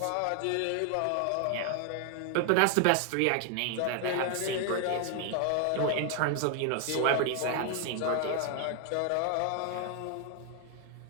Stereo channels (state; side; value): different; both; correlation 0.00